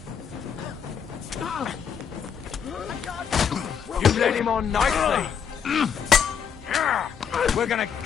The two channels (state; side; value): quieter; right; 7.4 dB